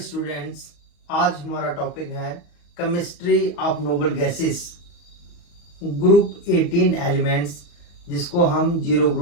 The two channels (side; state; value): right; late; 34 ms